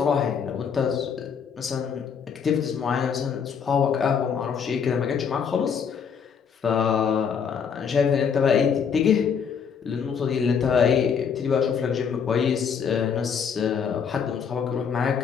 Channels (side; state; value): right; quieter; 6.9 dB